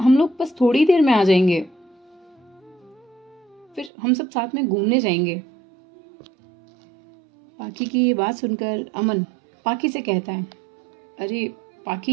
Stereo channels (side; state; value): left; drops out; at 3.9 s